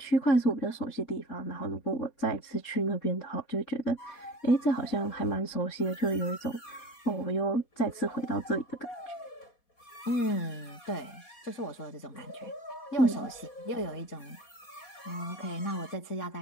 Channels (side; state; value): right; late; 4.2 ms